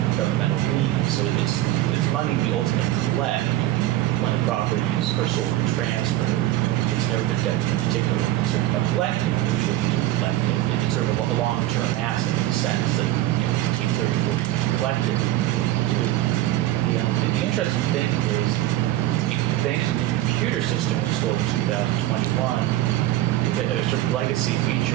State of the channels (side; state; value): left; quieter; 14.6 dB